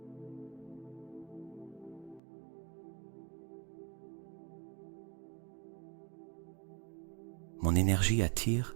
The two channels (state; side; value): drops out; left; at 2.2 s